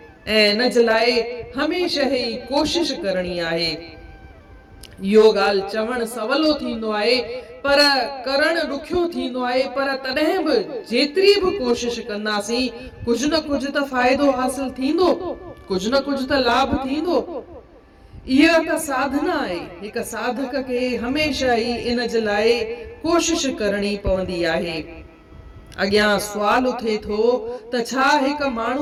ऐं इन जे लाइ हमेशह ई कोशिश करणी आहे। इहो ॻाल्हि चवणु सवलो थींदो आहे पर करणु ॾुखियो थींदो आहे। पर तॾहिं बि जेतिरी बि कोशिश कंदासीं कुझु न कुझु त फ़ाइदो हासिल थींदो, कुझु न कुझु त लाभ थींदो। इहा त साधना आहे। हिकु साधक खे हमेशह ई इन जे लाइ कोशिश करणी पवंदी आहे। अॻियां सुवाल उथे थो त छा हिकु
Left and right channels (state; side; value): identical; both; correlation 1.00